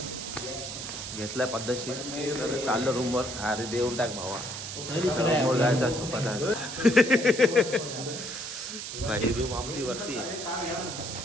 घेतलाय पद्धतशीर. तर चाललं रूमवर. अरे देऊन टाक भावा, रूमवर जायचा झोपायचा भाई. रूम आमची वरती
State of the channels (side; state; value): right; noise; hiss, 7 dB below the sound